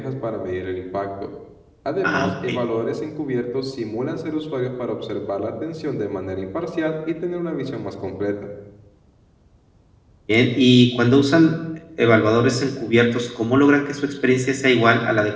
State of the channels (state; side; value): identical; both; correlation 1.00